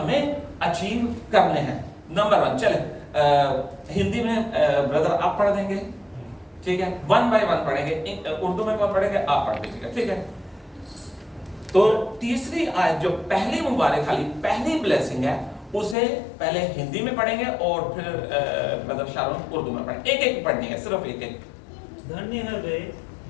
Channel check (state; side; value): drops out; right; at 16.0 s